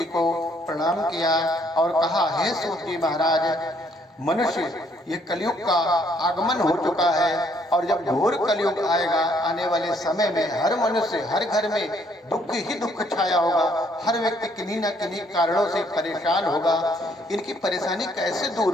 को प्रणाम किया और कहा, हे सूत जी महाराज, मनुष्य ये कलयुग का आगमन हो चुका है और जब घोर कलयुग आएगा, आने वाले समय में हर मनुष्य, हर घर में दुख ही दुख छाया होगा। हर व्यक्ति किन्हीं न किन्हीं कारणों से परेशान होगा। इनकी परेशानी कैसे दूर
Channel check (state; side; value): normal; both; correlation 0.67